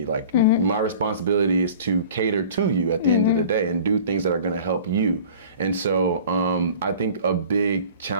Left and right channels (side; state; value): both; inverted; correlation -0.44